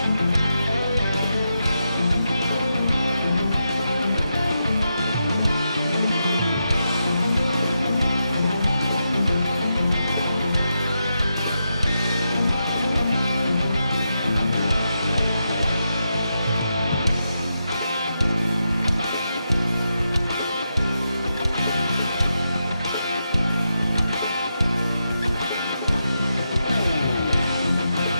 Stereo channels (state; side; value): inverted; both; correlation -0.86